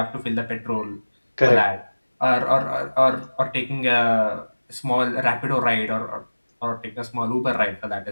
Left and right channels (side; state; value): both; inverted; correlation -1.00